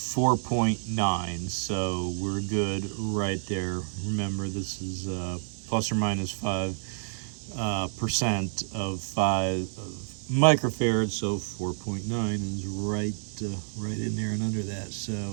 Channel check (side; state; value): left; silent; digital silence